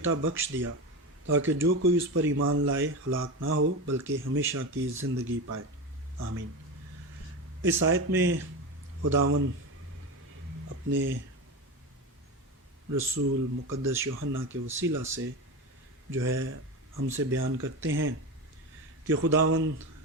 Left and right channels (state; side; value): normal; both; correlation 0.21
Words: بخش دیا تاکہ جو کوئی اس پر ایمان لائے ہلاک نہ ہو بلکہ ہمیشہ کی زندگی پائے۔ آمین۔ اس آیت میں خداوند اپنے رسول مقدس یوحنا کے وسیلہ سے جو ہے ہم سے بیان کرتے ہیں کہ خداوند